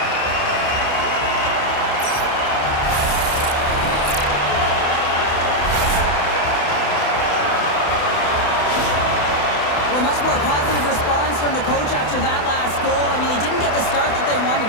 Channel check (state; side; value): late; right; 28 ms